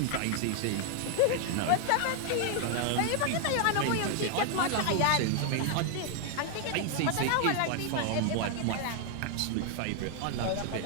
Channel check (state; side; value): different; both; correlation 0.00